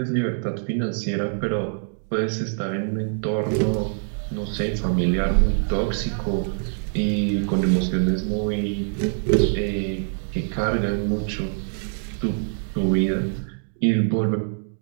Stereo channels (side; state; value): left; silent; digital silence